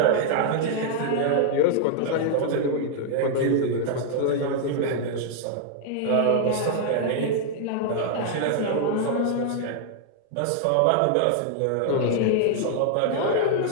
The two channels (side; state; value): both; different; correlation -0.01